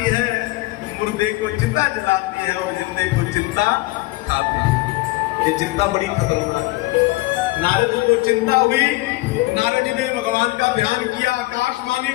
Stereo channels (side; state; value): right; quieter; 20.7 dB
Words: है, मुर्दे को चिता जलाती है और जिंदे को चिंता खाती है। ये चिंता बड़ी खतरनाक है। नारद जी को चिंता हुई, नारद जी ने भगवान का ध्यान किया, आकाशवाणी